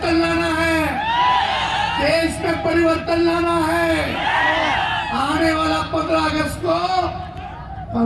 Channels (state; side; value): identical; both; correlation 1.00